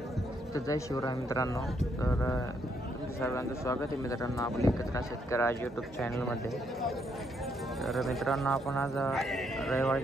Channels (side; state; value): both; normal; correlation 0.74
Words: जय शिवराय मित्रांनो. तर तुमचं सर्वांचं स्वागत आहे मित्रांनो आपल्या एकत्र शेतकरी आज यूट्यूब चॅनलमध्ये. तर मित्रांनो आपण आज